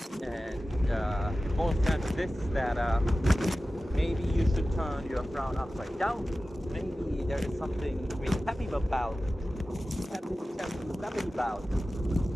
And it boils down to this, that maybe you should turn your frown upside down. Maybe there is something to be happy about. Happy about.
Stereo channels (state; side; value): normal; both; correlation 0.95